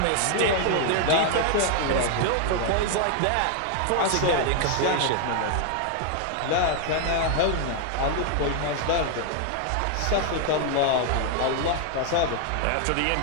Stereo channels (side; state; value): both; different; correlation 0.00